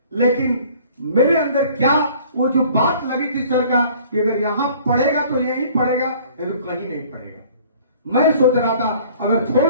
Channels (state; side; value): inverted; both; correlation -0.52